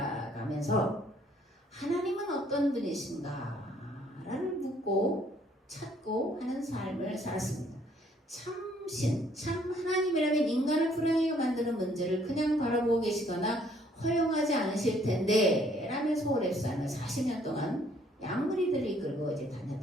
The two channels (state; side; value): normal; both; correlation 0.64